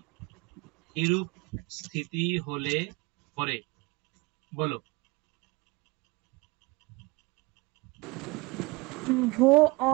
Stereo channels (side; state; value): left; quieter; 25.0 dB